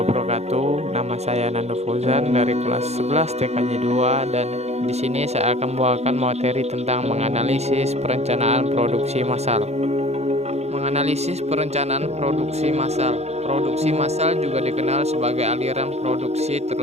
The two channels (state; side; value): late; left; 0.31 ms